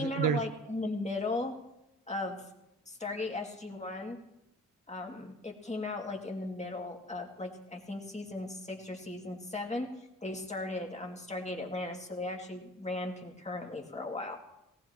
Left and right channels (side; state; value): both; normal; correlation 0.45